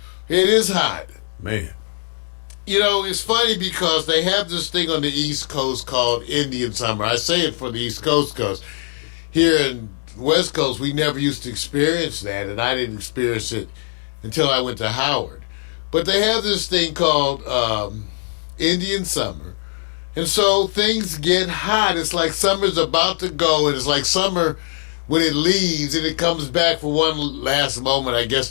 It is hot. Man. You know, it's funny because they have this thing on the East Coast called Indian Summer. I say it for the East Coast because here in the West Coast, we never used to experience that, and I didn't experience it until I went to Howard. But they have this thing called Indian Summer. And so things get hot. It's like summer's about to go, and it's like summer when it leaves and it comes back for one last moment, I guess,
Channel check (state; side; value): silent; right; digital silence